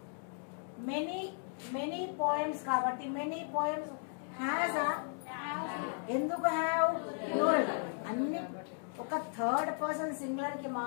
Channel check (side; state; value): right; silent; 54 dB below the other